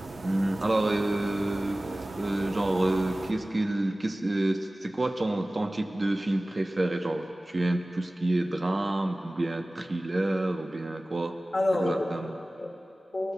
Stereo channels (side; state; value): both; normal; correlation 0.97